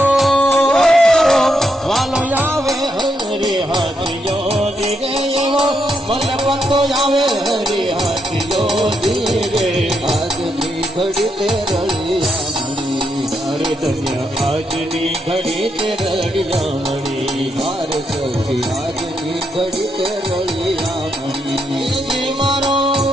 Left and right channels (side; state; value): both; normal; correlation 0.80